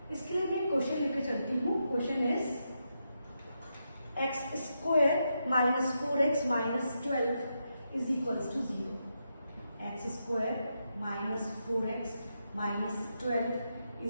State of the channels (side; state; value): both; inverted; correlation -0.84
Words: इसके लिए मैं क्वेश्चन लेकर चलती हूँ। Question is x square minus 4x minus 12 is equals to 0। x square minus 4x minus 12